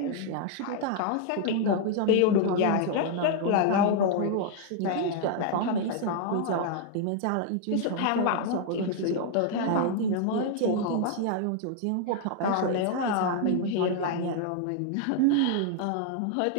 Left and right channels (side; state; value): both; different; correlation 0.00